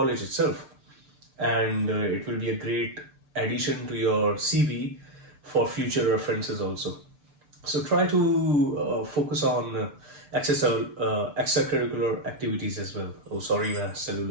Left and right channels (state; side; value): late; left; 6.7 ms